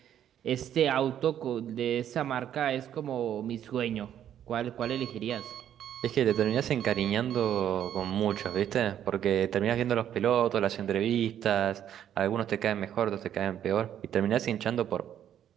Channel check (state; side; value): quieter; left; 10.3 dB